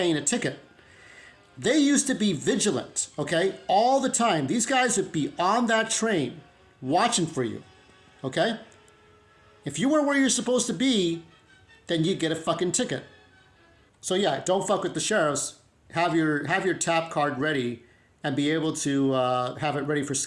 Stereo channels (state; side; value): identical; both; correlation 1.00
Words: a ticket. They used to be vigilant, okay? All the time. These guys would be on that train watching for you, okay? If you weren't where you're supposed to be, then you get a fucking ticket. So yeah, don't fuck with the sheriffs. Have your tap card ready and be able to have it ready for